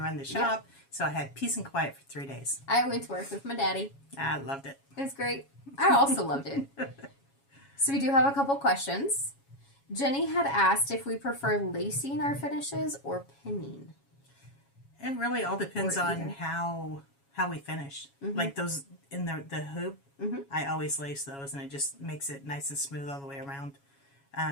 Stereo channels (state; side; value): late; right; 7.2 ms